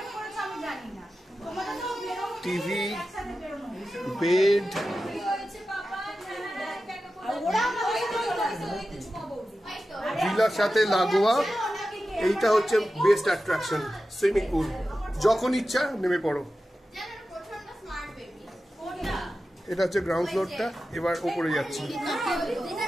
টিভি, বেড, ভিলার সাথে লাগোয়া। এইটা হচ্ছে বেস্ট অ্যাট্রাকশন, সুইমিং পুল। যখন ইচ্ছা নেমে পড়ো। এটা হচ্ছে গ্রাউন্ড ফ্লোরটা। এবার উপরে যাচ্ছি,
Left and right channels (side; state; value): both; normal; correlation 0.93